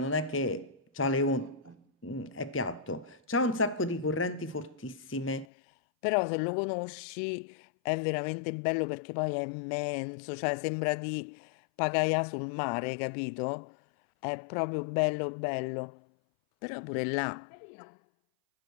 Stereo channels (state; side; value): drops out; right; at 5.5 s